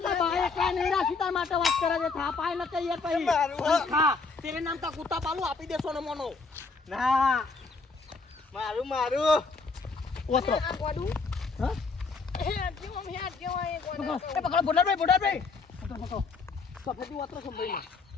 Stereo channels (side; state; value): right; quieter; 4.3 dB